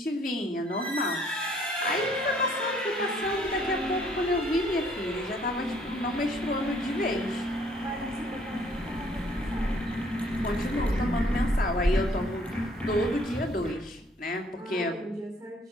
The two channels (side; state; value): both; normal; correlation 0.62